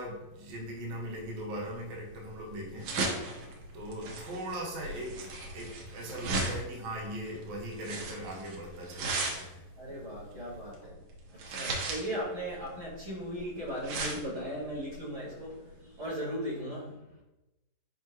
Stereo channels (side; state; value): left; late; 11 ms